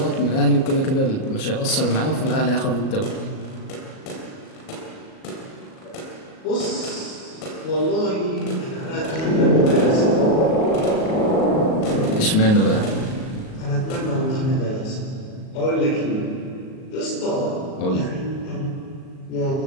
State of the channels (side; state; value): right; late; 38 ms